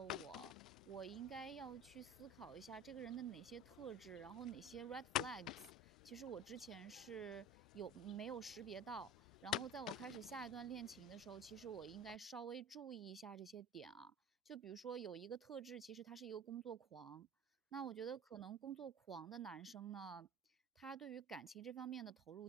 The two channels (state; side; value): normal; both; correlation 0.37